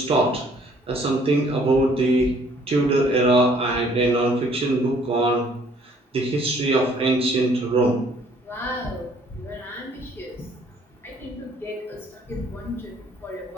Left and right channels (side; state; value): both; normal; correlation 0.60